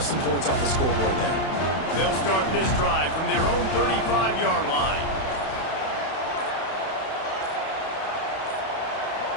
some points off the scoreboard there. They'll start this drive from their own 35-yard line.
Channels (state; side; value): late; right; 31 ms